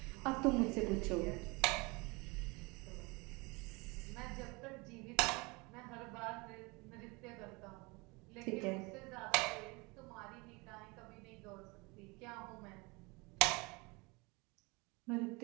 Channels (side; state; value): left; quieter; 26.6 dB